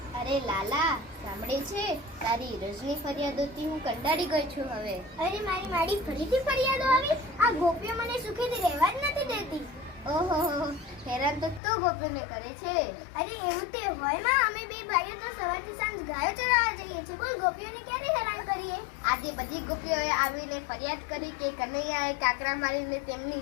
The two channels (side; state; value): right; drops out; at 11.6 s